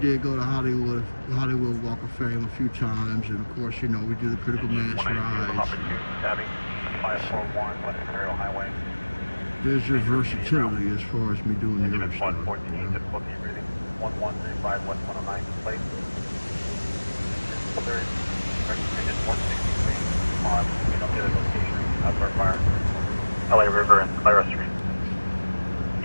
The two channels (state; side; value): inverted; both; correlation -1.00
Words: go to Hollywood Walk of Fame a few times, and of course, you know, we do the Critical Mass rides. There's your versatility as far as me doing the other stuff. 1135 West 109 place. Third, Digit 163 on the other location of our fire. LA River and Clara Street.